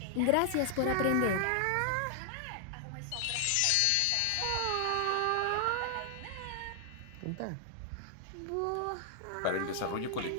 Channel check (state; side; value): different; both; correlation 0.00